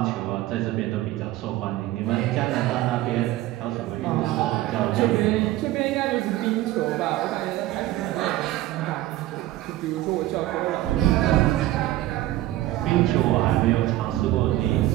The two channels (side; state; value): left; quieter; 15.5 dB